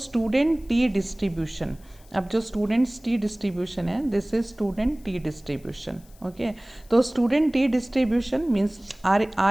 student T distribution, अब जो students T distribution है this is student T distribution. Okay, तो student T distribution means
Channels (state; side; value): noise; left; hiss, 28 dB below the sound